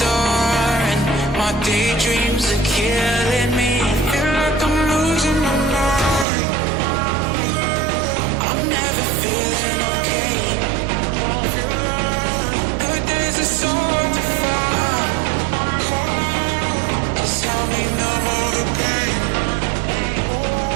and my daydreams are killing me. Feel like I'm losing my mind. I'm never feeling okay. Good days are so hard to find. Just help me numb all the pain.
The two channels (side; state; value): left; drops out; at 6.2 s